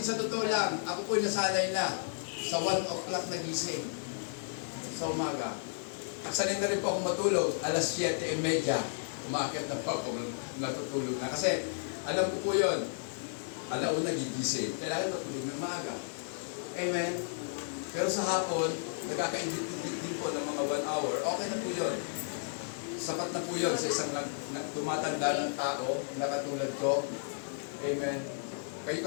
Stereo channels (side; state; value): right; silent; digital silence